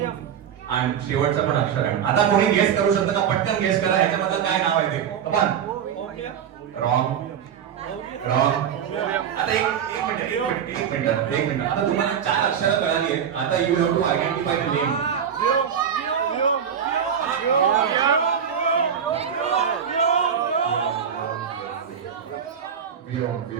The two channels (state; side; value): quieter; left; 8.2 dB